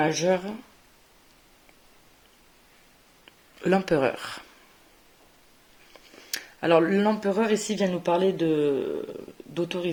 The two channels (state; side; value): identical; both; correlation 1.00